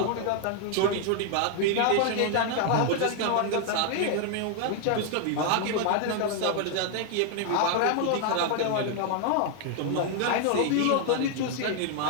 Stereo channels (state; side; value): different; both; correlation 0.00